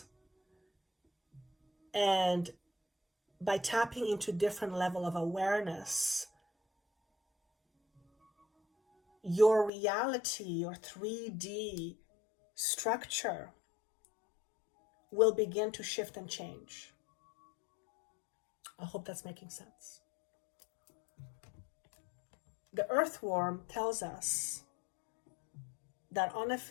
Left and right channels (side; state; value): right; drops out; at 9.7 s